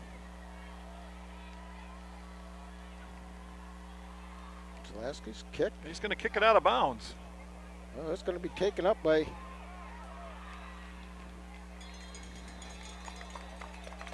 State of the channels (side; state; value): both; identical; correlation 1.00